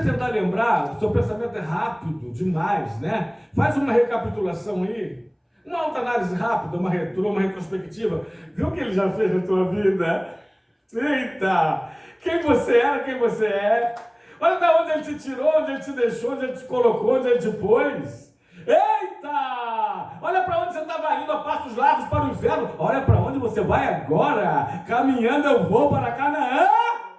lembrar, o seu pensamento é rápido demais, né? Faz uma recapitulação aí, uma autoanálise rápida, uma retrospectiva. Viu o que ele já fez na tua vida? Eita! Quem você era, quem você é. Olha de onde ele te tirou, onde ele te deixou, onde ele te colocou, onde ele te pôs. Eita! Olha para onde você estava indo a passos largos para o inferno. Olha para onde você vai agora. Caminhando eu vou para Canaã.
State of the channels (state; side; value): identical; both; correlation 1.00